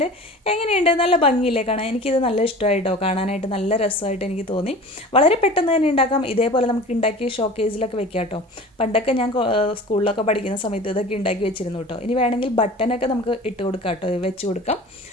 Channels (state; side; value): normal; both; correlation 0.39